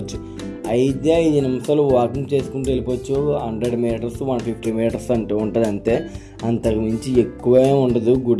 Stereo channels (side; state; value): both; identical; correlation 1.00